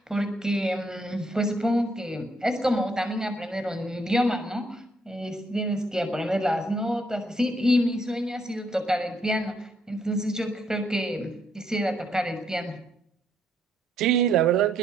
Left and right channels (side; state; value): both; normal; correlation 0.72